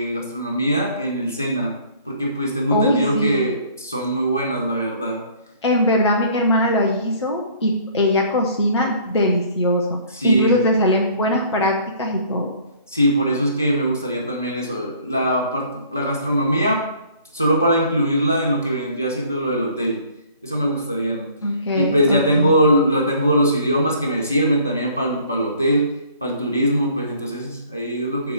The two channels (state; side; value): inverted; both; correlation -0.55